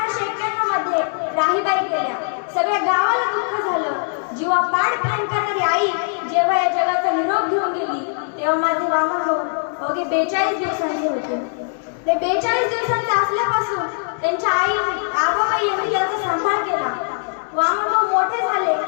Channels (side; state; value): right; silent; 65 dB below the other